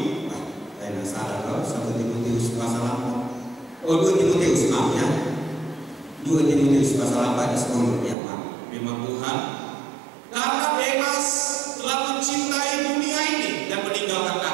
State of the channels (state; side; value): drops out; left; at 8.2 s